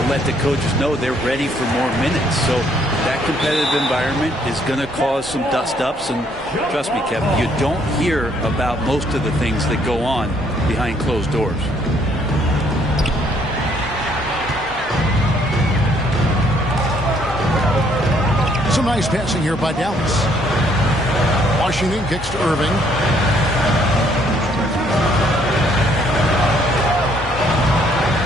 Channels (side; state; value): both; normal; correlation 0.66